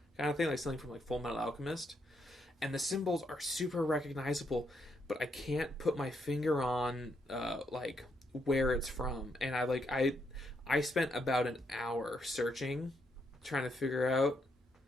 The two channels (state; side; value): normal; both; correlation 0.77